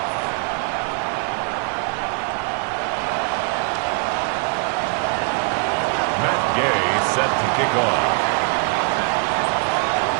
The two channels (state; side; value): quieter; left; 37.1 dB